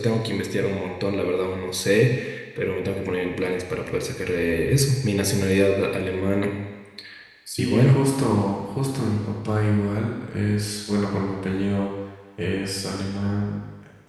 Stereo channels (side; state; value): both; identical; correlation 1.00